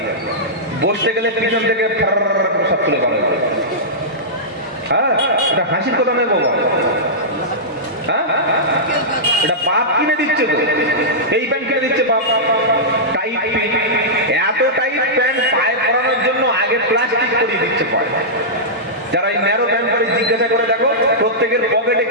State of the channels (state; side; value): normal; both; correlation -0.13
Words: বসতে গেলে পিছন থেকে সব তুলে পাবে। হ্যাঁ, এটা হাসির কথা নয় বাবা। হ্যাঁ, এটা বাপ কিনে দিচ্ছে তো, এই প্যান্ট কিনে দিচ্ছে বাপ। টাইট প্যান্ট, এত টাইট প্যান্ট পায়ে পরানোর জন্য আগে প্লাস্টিক করিয়ে দিচ্ছে পায়ে। যারা এই ন্যারো প্যান্ট পরে জিজ্ঞাসা করে দেখো, প্রত্যেকের পকেটে